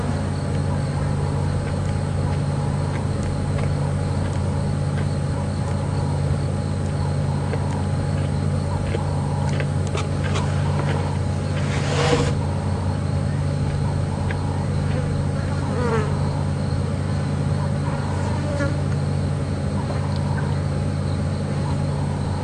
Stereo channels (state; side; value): identical; both; correlation 1.00